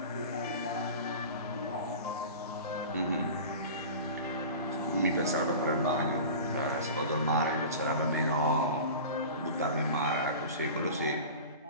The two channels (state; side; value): inverted; both; correlation -0.35